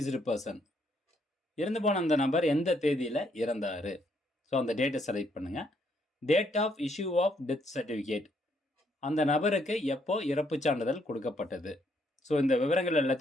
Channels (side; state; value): both; normal; correlation 0.72